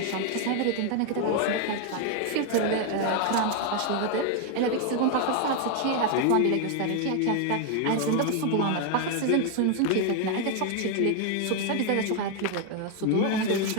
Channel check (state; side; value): different; both; correlation 0.01